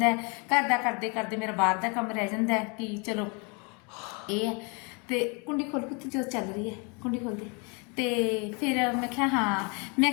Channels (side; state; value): right; quieter; 32.9 dB